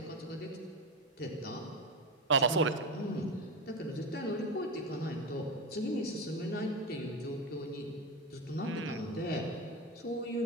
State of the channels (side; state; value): both; normal; correlation 0.19